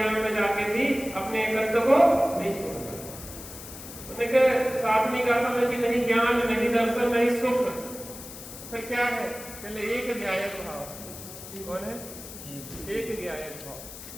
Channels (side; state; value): left; noise; hiss, 13 dB below the sound